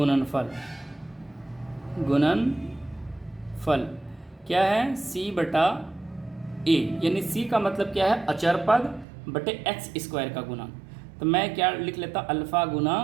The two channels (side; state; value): left; drops out; at 9.1 s